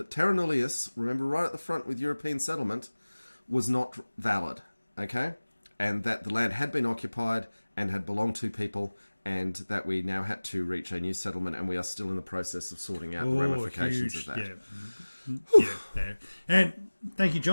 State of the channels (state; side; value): inverted; both; correlation -1.00